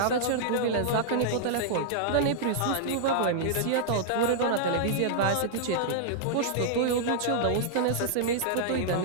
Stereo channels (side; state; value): both; different; correlation -0.01